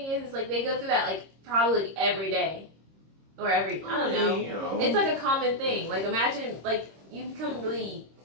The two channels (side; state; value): left; late; 26 ms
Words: is, like they go through that like probably like, every day or I don't know. You know. It's like a common thing. Like imagine like you become really.